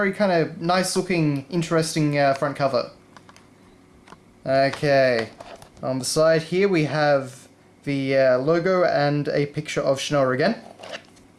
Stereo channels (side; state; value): both; identical; correlation 1.00